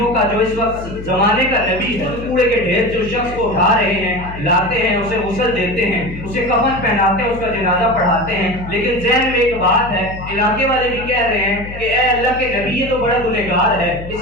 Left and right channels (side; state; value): left; noise; hum, 11 dB below the sound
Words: کا جو اس وقت زمانے کا نبی ہے، کوڑے کے ڈھیر سے اس شخص کو اٹھا رہے ہیں، لاتے ہیں، اسے غسل دیتے ہیں، اسے کفن پہناتے ہیں، اس کا جنازہ پڑھاتے ہیں۔ لیکن ذہن میں ایک بات ہے، علاقے والے بھی کہہ رہے ہیں کہ اے اللہ کے نبی یہ تو بڑا گنہگار ہے،